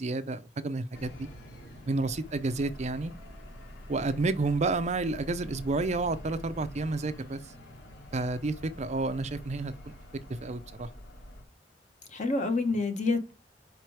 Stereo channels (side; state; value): both; normal; correlation 0.55